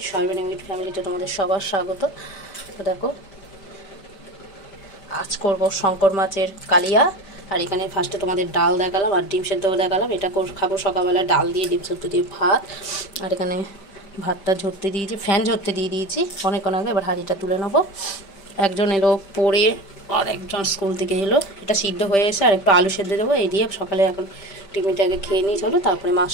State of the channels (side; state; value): right; late; 5.1 ms